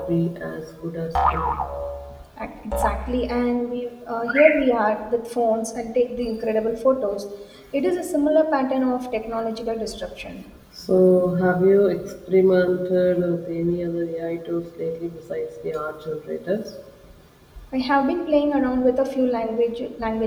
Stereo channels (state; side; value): identical; both; correlation 1.00